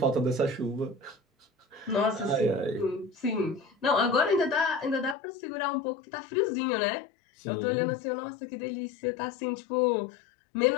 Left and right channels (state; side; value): drops out; right; at 5.2 s